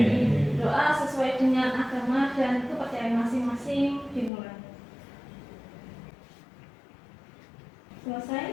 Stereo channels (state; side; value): drops out; right; at 4.3 s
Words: Doa sesuai dengan agama dan kepercayaan masing-masing dimulai.